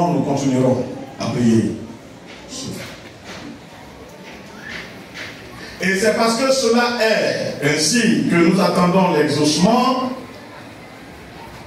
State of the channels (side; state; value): both; identical; correlation 1.00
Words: à prier. Et c'est parce que cela est ainsi que nous attendons l'exaucement